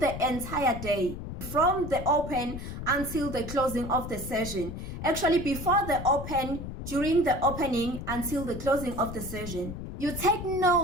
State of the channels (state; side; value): noise; left; rumble, 8 dB below the sound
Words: the entire day, from the open until the closing of the session. Actually, before the open, during the opening, until the closing of the session. You take